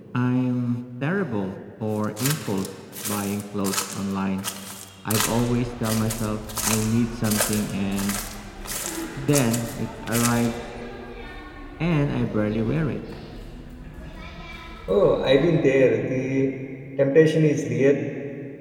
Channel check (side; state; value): both; identical; correlation 1.00